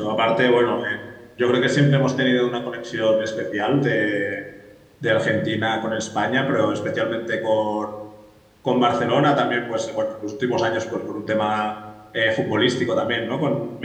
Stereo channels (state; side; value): identical; both; correlation 1.00